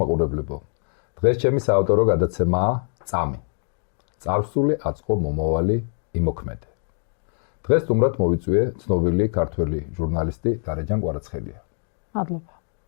მაყურებლებო. დღეს ჩემი საავტორო გადაცემაა წამი. წარსული აწყო მომავალი იმოქმედე. დღეს სტუმრად მოვიწვიე ცნობილი ქართველი ჟურნალისტი დარეჯან კვარაცხელია. მადლობა.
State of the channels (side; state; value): right; silent; digital silence